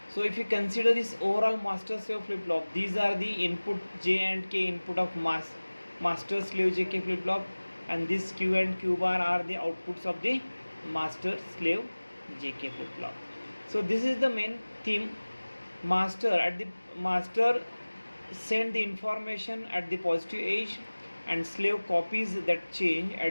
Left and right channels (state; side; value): inverted; both; correlation -1.00